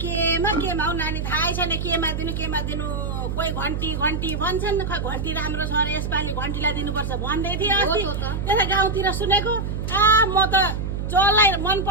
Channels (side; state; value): right; noise; hum, 3 dB below the sound